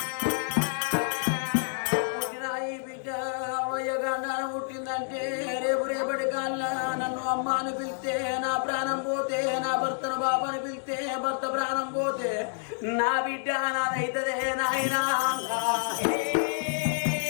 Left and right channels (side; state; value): right; silent; 59 dB below the other